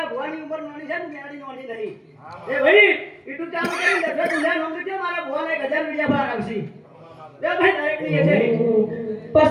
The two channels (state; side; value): identical; both; correlation 1.00